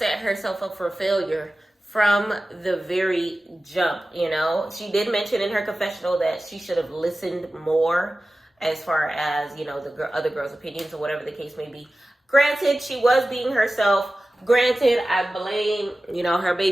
herself up for failure from the very jump, you know. She did mention in her confessional that she should have listened more as far as, you know, the other girls' opinions or whatever the case may be. Granted, she was being herself. Granted, I blame, you know, her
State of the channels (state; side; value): normal; both; correlation 0.96